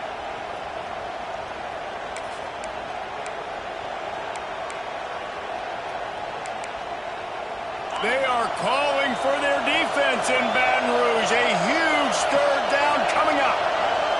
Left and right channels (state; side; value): identical; both; correlation 1.00